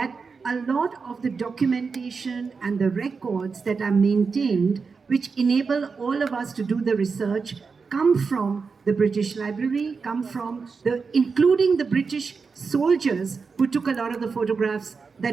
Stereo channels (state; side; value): quieter; left; 5.0 dB